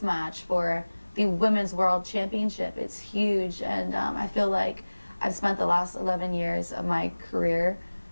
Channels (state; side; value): inverted; both; correlation -1.00